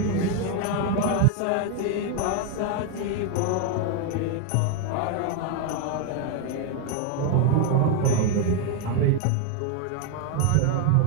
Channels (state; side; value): different; both; correlation 0.01